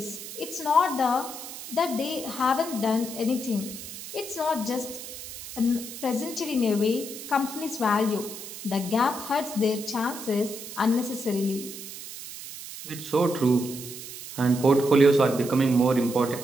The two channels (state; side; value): noise; right; hiss, 11 dB below the sound